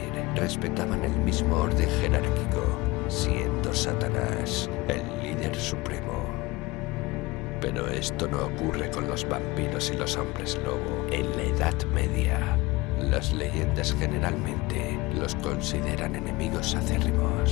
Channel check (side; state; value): right; quieter; 21.9 dB